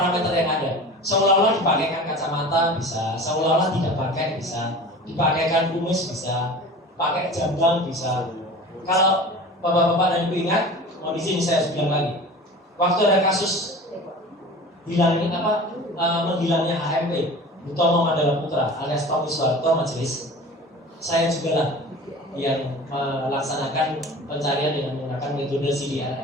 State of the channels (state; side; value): normal; both; correlation 0.38